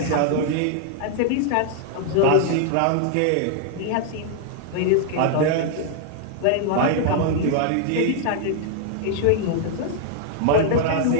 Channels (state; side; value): different; both; correlation 0.00